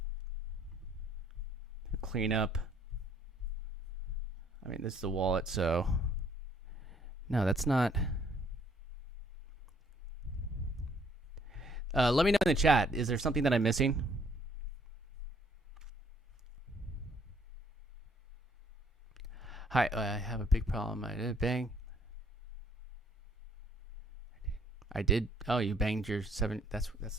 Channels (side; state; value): both; normal; correlation 0.63